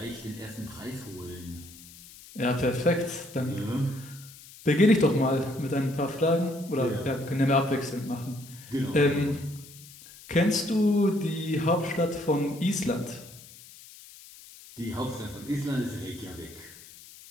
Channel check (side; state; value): left; noise; hiss, 19 dB below the sound